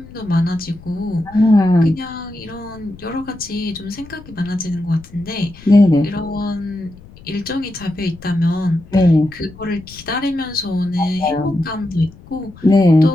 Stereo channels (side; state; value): left; noise; rumble, 20 dB below the sound